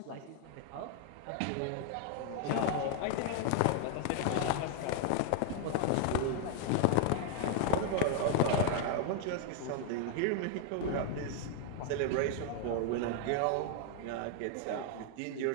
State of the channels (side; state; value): both; different; correlation 0.00